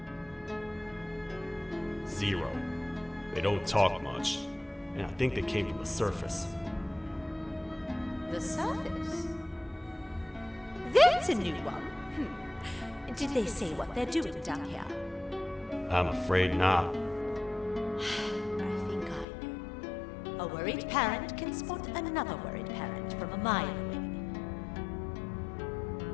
0. They don't talk much, and I think they came from the surface. The surface? That's a new one. Did they say what they're doing down here? I'm afraid not. I think I know. A worried parent can spot another worried parent from a mile away.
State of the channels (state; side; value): drops out; right; at 19.2 s